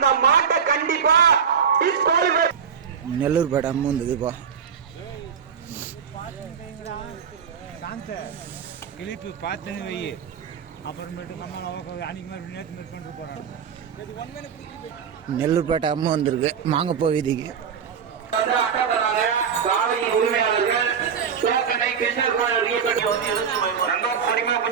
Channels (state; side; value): quieter; left; 7.0 dB